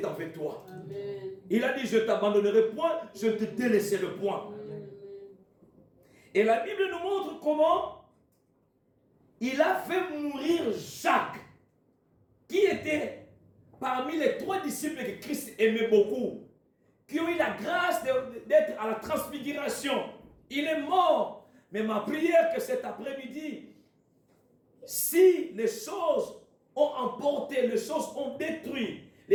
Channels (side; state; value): both; identical; correlation 1.00